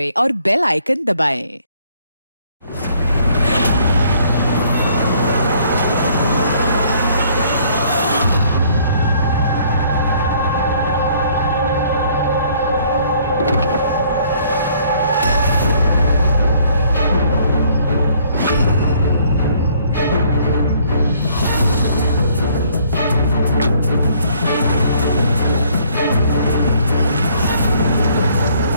और बेल आइकन दबाएं।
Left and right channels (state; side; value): inverted; both; correlation -0.62